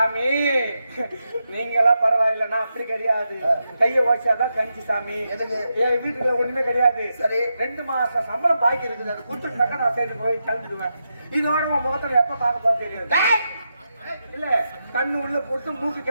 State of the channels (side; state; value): both; inverted; correlation -0.86